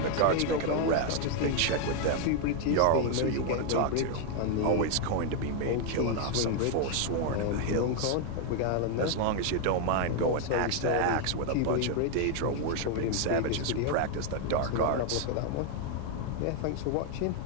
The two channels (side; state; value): both; different; correlation 0.01